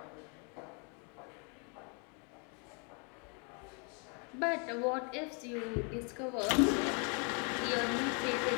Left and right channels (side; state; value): right; quieter; 35.8 dB